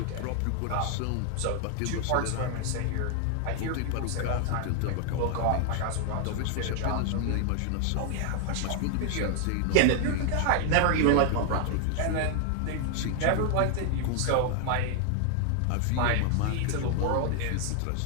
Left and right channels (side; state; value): both; different; correlation 0.00